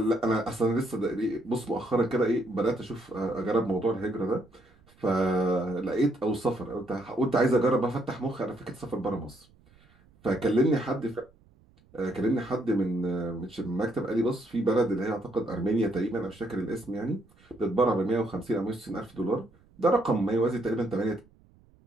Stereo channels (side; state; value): right; noise; rumble, 30 dB below the sound